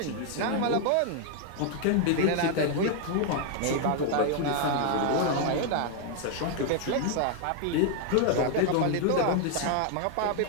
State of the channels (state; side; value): different; both; correlation 0.00